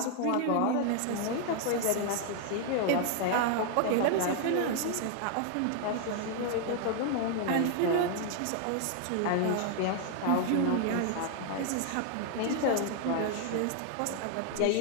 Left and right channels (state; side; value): different; both; correlation 0.00